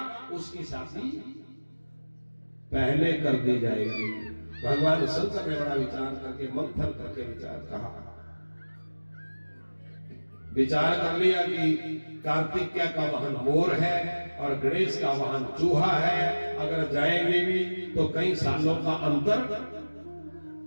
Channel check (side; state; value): both; inverted; correlation -1.00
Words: उसकी शादी पहले कर दी जाएगी। भगवान शंकर ने बड़ा विचार करके, मंथन करके विचार कर लिया कि कार्तिकेय का वाहन मोर है और गणेश का वाहन चूहा है। अगर जाएंगे भी तो कई सालों का अंतर